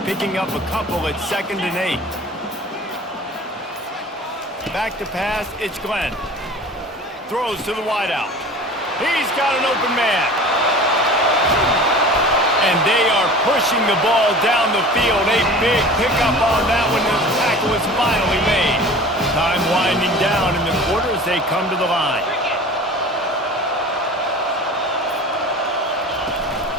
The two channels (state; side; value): normal; both; correlation 0.40